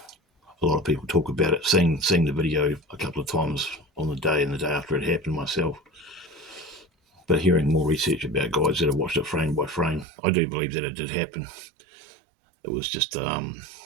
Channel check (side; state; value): left; drops out; at 10.1 s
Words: lot of people talk about it, seeing the video a couple of times on the day and the day after it happened myself, but hearing more research about guys that have watched it frame by frame, I do believe that it did happen. It was just,